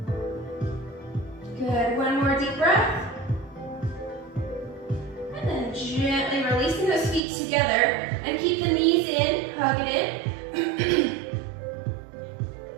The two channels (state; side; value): drops out; left; at 7.2 s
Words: one more deep breath. And then gently releasing those feet together and keep the knees in, hug it in.